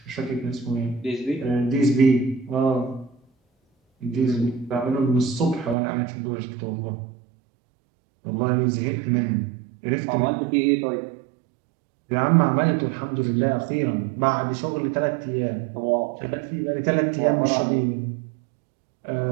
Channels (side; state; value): left; drops out; at 5.8 s